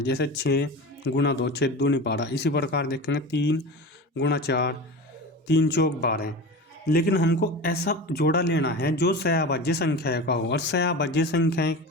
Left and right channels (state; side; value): normal; both; correlation 0.30